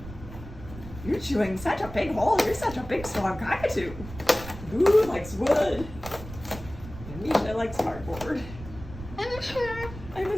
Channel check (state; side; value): noise; right; rumble, 13 dB below the sound